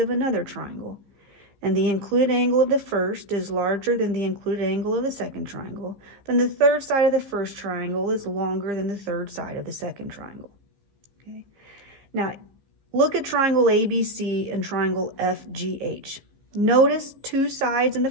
another triangle, and the included angle of the first is larger than the included angle of the second triangle, then the third side of the first triangle is longer than the third side of the second triangle. Okay. Now, look at triangle ABC and triangle FGH. Notice 2 sides in the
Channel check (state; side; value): late; left; 15 ms